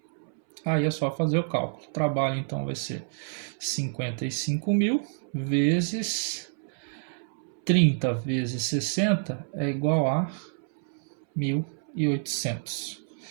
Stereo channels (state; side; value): silent; left; 59 dB below the other